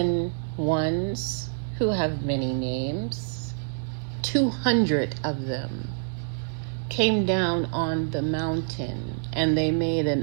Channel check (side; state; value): left; silent; digital silence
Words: ones who have many names, 200 of them, came down on the mountain and they made